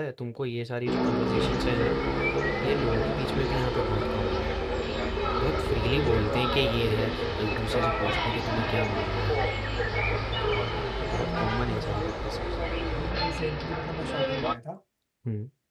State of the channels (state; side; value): identical; both; correlation 1.00